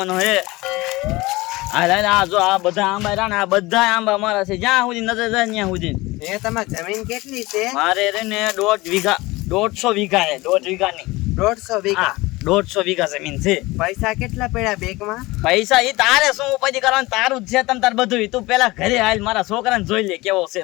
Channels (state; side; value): quieter; right; 21.1 dB